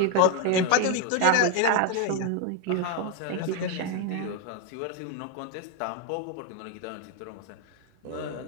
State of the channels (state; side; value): different; both; correlation 0.01